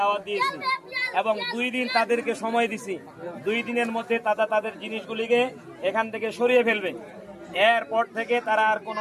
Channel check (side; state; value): both; identical; correlation 1.00